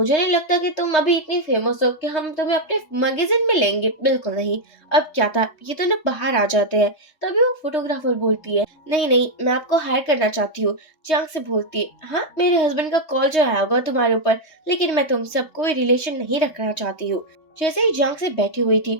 नहीं लगता कि तुम अभी इतनी फेमस हो कि हम तुम्हें अपने मैगजीन में लेंगे, बिल्कुल नहीं। अब क्या था, ये तो ना बाहर आ जाते हैं। तभी वो फोटोग्राफर बोलती है, नहीं नहीं मैं आपको हायर करना चाहती हूँ। जियांग से बोलती है, हाँ मेरे हस्बैंड का कॉल जो आया होगा तुम्हारे ऊपर, लेकिन मैं तुमसे अब कोई रिलेशन नहीं रखना चाहती हूँ। जैसे ही जियांग से बैठी हुई थी,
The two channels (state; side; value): late; right; 3.2 ms